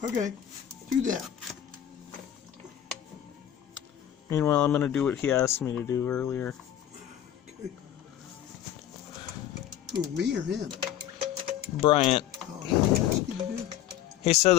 Okay, do that. Meanwhile, I'm gonna do what he asked me to do earlier. Okay. Who, me or him? Bryant. Oh, what did he ask you to do? He said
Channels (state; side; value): quieter; right; 11.1 dB